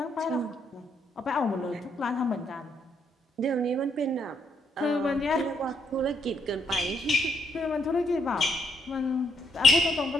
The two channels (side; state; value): both; normal; correlation 0.74